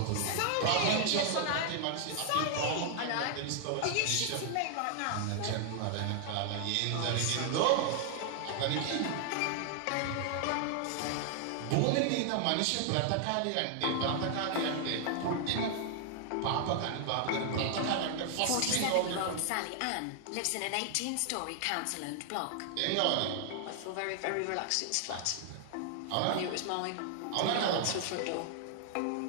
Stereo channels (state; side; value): different; both; correlation 0.00